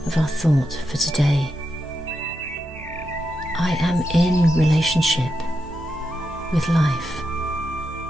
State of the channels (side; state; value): both; normal; correlation 0.86